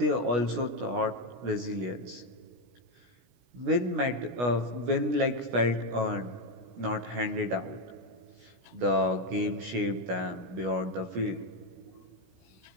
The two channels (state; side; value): late; left; 16 ms